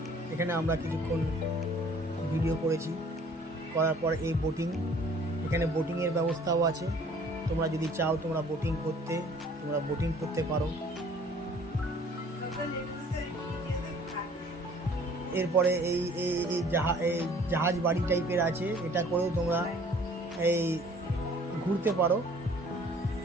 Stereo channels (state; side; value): normal; both; correlation 0.54